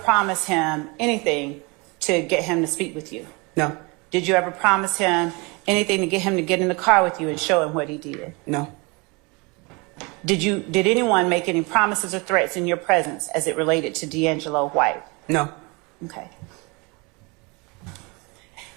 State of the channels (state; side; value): quieter; left; 28.3 dB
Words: him anything to get him to speak with you? No. Did you ever promise him anything to get him to get in the car with you and show him what he did? No. Did anyone make any promises or threats in your presence as it related to D'Angelo White? No. Okay.